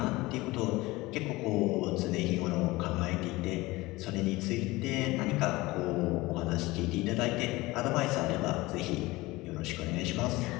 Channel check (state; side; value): quieter; right; 20.6 dB